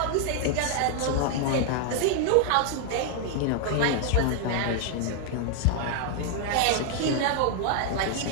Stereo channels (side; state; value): both; different; correlation 0.00